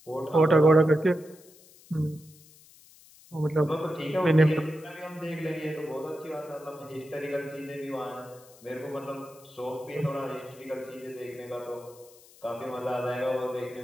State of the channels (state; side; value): noise; left; hiss, 24 dB below the sound